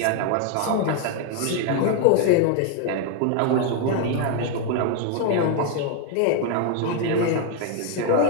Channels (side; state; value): both; different; correlation 0.01